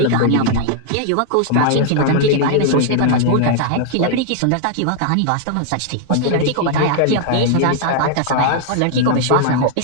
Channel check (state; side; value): different; both; correlation 0.00